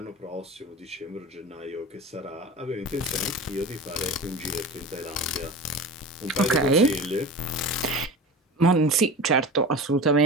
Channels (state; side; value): normal; both; correlation 0.32